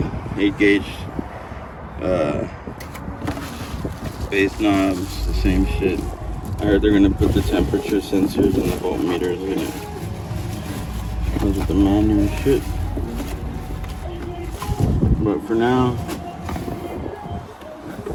8 gauge base knobs, the same shit. I heard they're gonna put the temperature sensors and the voltmeters in it. Comes with the manual and shit. But for now,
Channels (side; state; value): both; identical; correlation 1.00